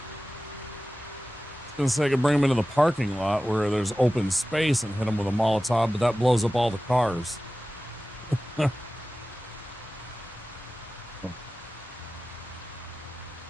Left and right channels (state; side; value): normal; both; correlation 0.96